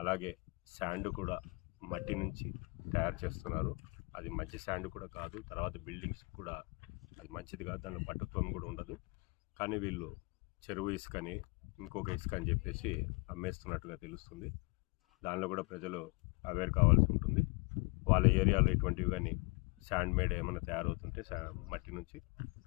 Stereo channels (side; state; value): right; quieter; 27.9 dB